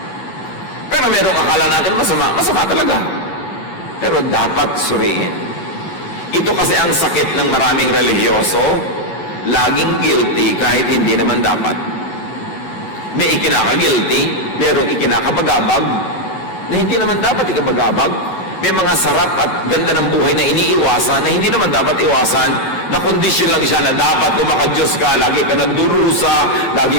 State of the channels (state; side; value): late; right; 11 ms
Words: Pero merong akala natin masama talaga. Pero dapat suriin. Ito kasi ang sakit ng maraming relihiyoso, laging guilty kahit hindi naman dapat. May ikinaka-guilty, merong ikinakapagabag, na hindi naman dapat ikapagabag. May mga sarap at ganda ng buhay na iniiwasan, na hindi naman dapat iwasan, na kondisyon lang siya na dapat kung maka-Diyos ka, lagi ka nagdurusa,